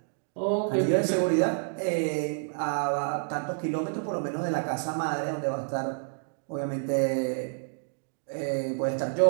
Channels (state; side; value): silent; left; digital silence